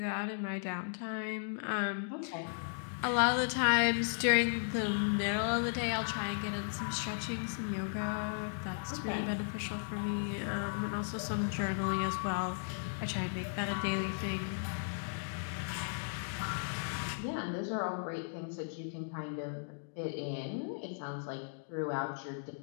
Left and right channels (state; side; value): silent; right; digital silence